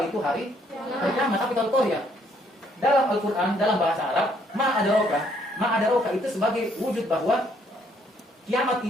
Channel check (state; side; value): normal; both; correlation 0.67